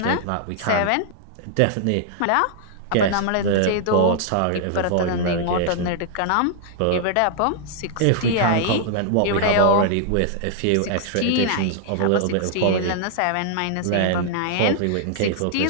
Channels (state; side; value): different; both; correlation -0.01